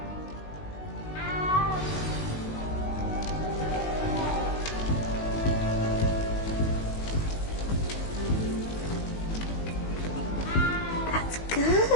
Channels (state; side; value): late; right; 19 ms